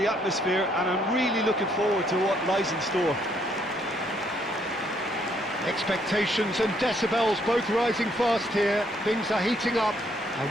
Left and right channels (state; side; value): normal; both; correlation 0.70